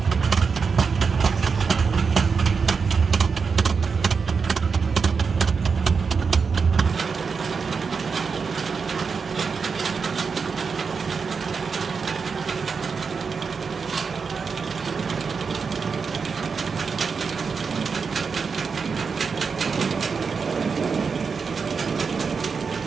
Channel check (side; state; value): left; quieter; 5.4 dB